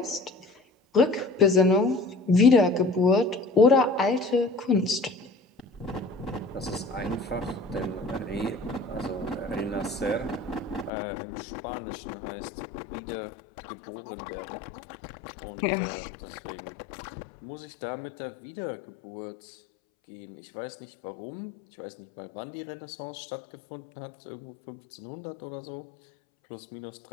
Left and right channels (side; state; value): right; drops out; at 10.9 s